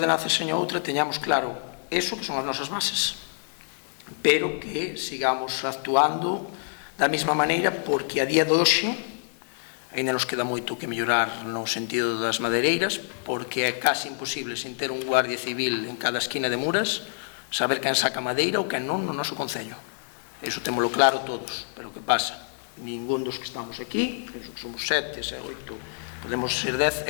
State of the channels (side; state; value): right; silent; 60 dB below the other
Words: e seña outra teñamos claro eso que son as nosas bases, pero que sigamos actuando da mesma maneira, porque a día de hoxe ainda nos queda moito que mellorar no sentido das madeireiras, porque é case imposible, sen ter un guardia civil en cada esquina de Muras, saber quen saca madeira ou quen non no noso concello. Iso témolo claro todos, pero que pasa? Ningún dos que estamos aquí, somos 7, 8, podemos ser 10,